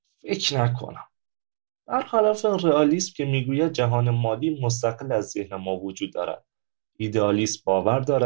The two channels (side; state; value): left; silent; digital silence